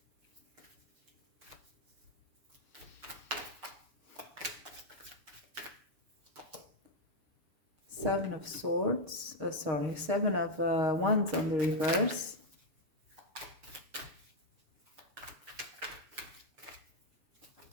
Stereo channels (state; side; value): late; left; 6.9 ms